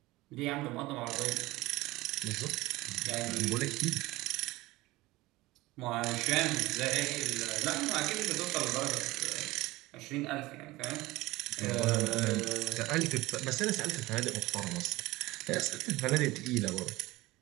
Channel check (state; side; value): quieter; left; 19.6 dB